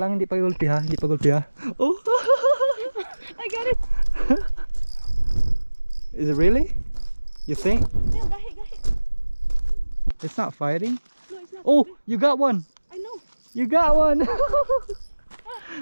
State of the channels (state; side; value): inverted; both; correlation -1.00